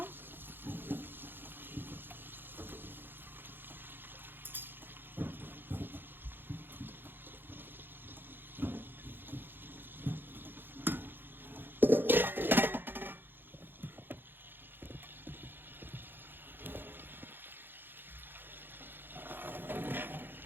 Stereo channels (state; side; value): late; left; 0.099 ms